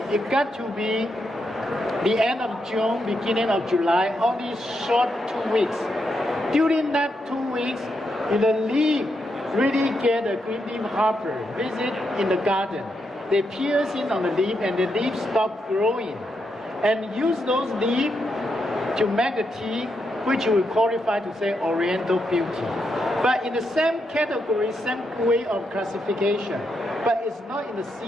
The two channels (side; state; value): both; normal; correlation 0.82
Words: it got to be the end of June, beginning of July, only short 2 weeks. During that 2 weeks, the leaf really get a green leaf hopper visit in the garden. They pierce in on the leaf and the leaves stop growing. And use those leaves to make the tea, which we qualify to say Oriental Beauty. But in the same category, same way of classification, but it's not in the